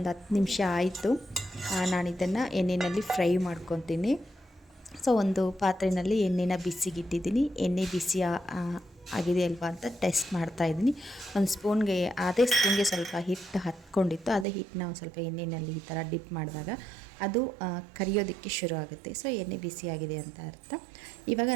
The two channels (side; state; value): left; drops out; at 14.5 s